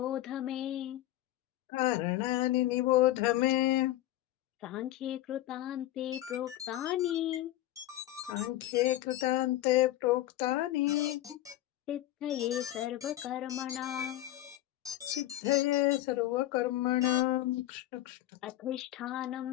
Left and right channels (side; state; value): right; quieter; 14.8 dB